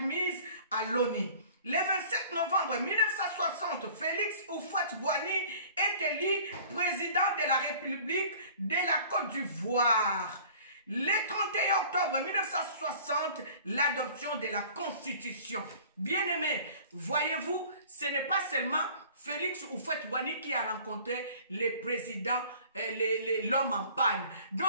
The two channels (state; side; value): inverted; both; correlation -0.48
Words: à l'ONU. Le 27 novembre 1960, Félix Houphouët-Boigny est élu président de la République de la Côte d'Ivoire. Le 31 octobre 1960, l'adoption de la Constitution. Bien-aimés, voyez-vous, ce n'est pas seulement Félix Houphouët-Boigny qui a rencontré le président, l'homme en panne.